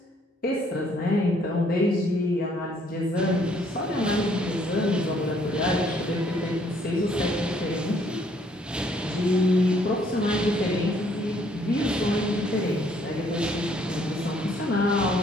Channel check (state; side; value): normal; both; correlation 0.65